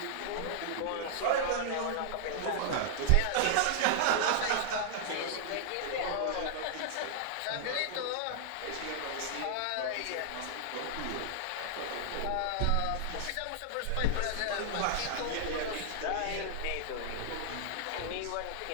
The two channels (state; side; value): different; both; correlation -0.01